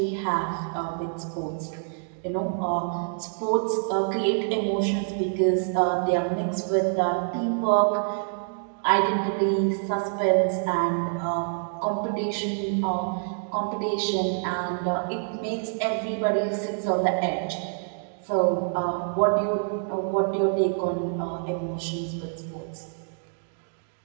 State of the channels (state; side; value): silent; left; digital silence